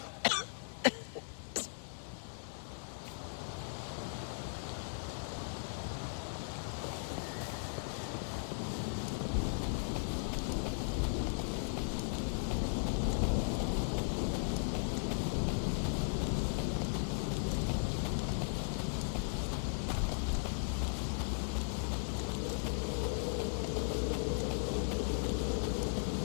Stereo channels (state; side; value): silent; right; digital silence